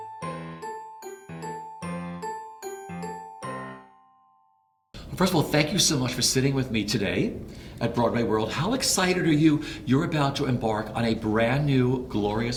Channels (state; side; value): identical; both; correlation 1.00